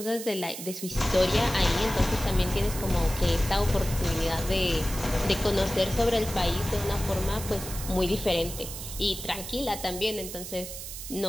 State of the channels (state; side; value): noise; right; hiss, 9 dB below the sound